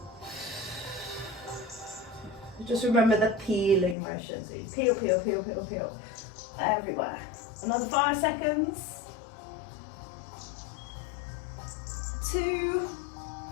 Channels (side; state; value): right; drops out; at 4.0 s